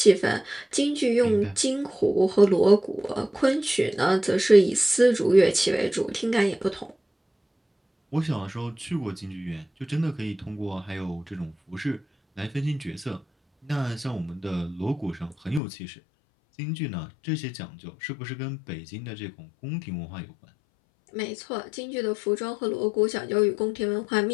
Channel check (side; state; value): right; drops out; at 15.6 s